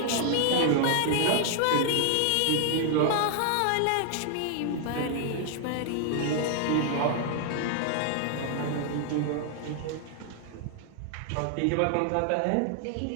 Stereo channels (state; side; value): different; both; correlation 0.00